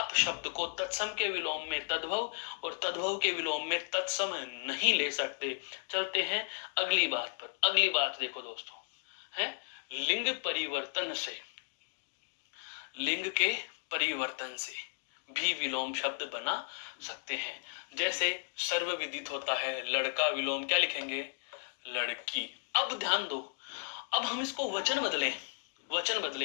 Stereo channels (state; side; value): silent; right; 55 dB below the other